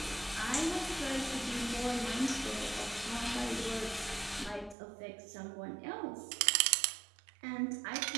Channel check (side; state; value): left; drops out; at 4.8 s